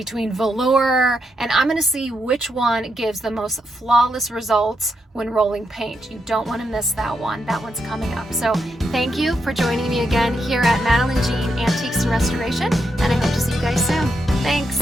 velour, and I'm going to see which one gives the most flawless results when rolling paint. You don't want to miss that one. That one's coming up. So thank you for joining me again here at Madeline Jean Antiques Restoration, and I hope to see you guys soon. Thanks.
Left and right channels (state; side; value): normal; both; correlation 0.82